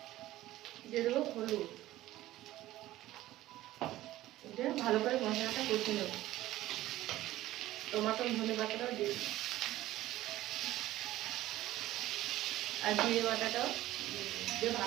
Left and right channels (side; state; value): left; quieter; 15.5 dB